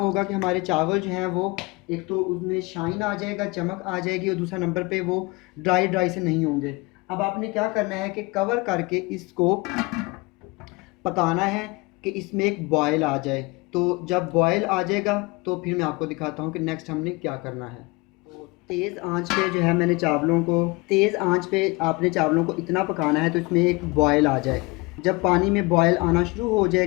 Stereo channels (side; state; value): right; quieter; 25.3 dB